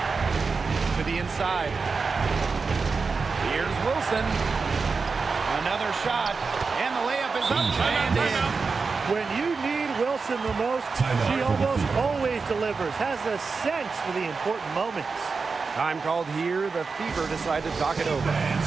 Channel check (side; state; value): left; quieter; 4.6 dB